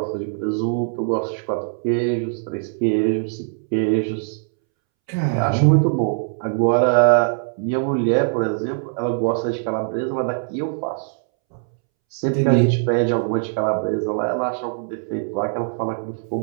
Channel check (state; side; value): silent; left; 65 dB below the other